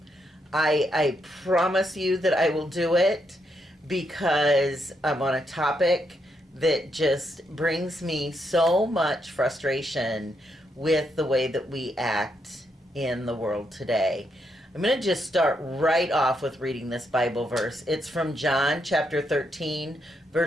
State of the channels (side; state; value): both; normal; correlation 0.79